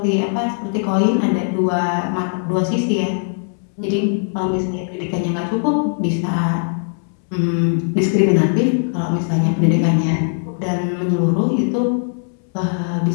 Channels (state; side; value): silent; right; 66 dB below the other